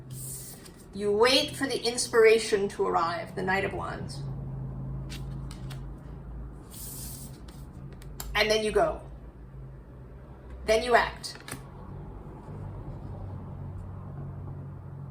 You wait for the inspiration to arrive, the Knight of Wands. And then you go. Then you act.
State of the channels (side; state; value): both; identical; correlation 1.00